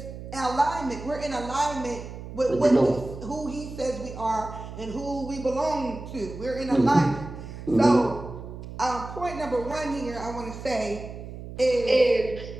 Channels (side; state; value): right; noise; hum, 11 dB below the sound